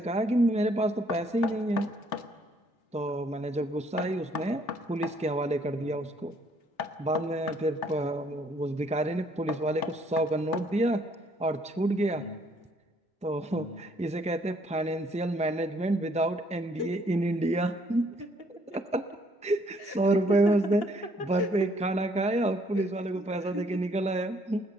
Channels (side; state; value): both; normal; correlation 0.66